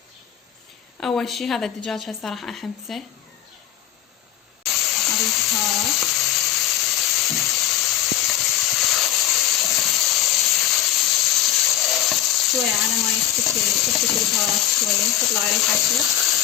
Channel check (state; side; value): quieter; right; 12.3 dB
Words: اول شي هذا الدجاج هسه راح احمسه، اضيف بهارات، شوية على ما تفتك البهارات شوية تطلع ريحتها.